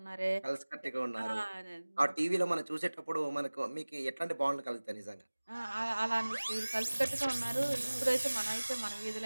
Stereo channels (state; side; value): inverted; both; correlation -1.00